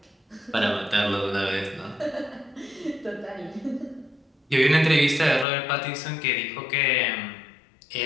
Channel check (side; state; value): right; drops out; at 5.5 s